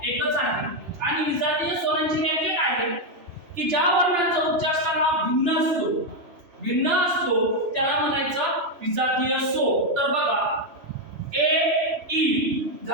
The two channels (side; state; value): left; late; 2.9 ms